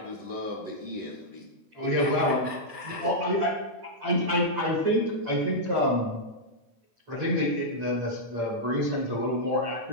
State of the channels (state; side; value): late; left; 8.7 ms